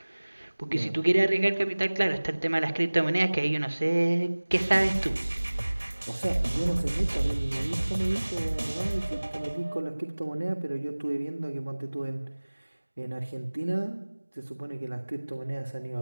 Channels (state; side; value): inverted; both; correlation -1.00